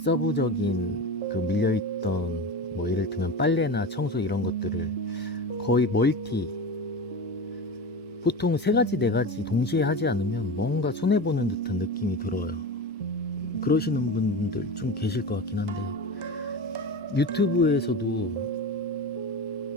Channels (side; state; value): both; normal; correlation 0.27